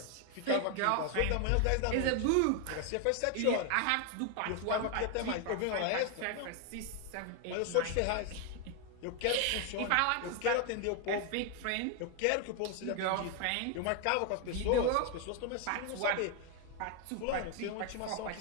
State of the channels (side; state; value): both; different; correlation 0.01